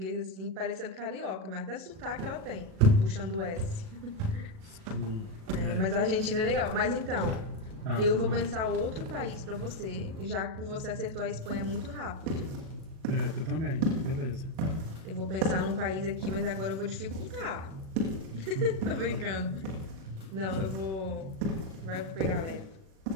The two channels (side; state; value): left; late; 37 ms